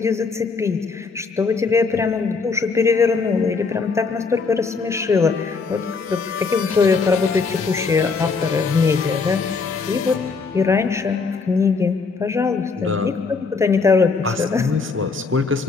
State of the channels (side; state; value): right; quieter; 4.7 dB